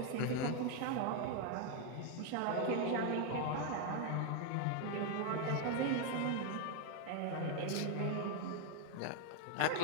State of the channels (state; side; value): different; both; correlation 0.01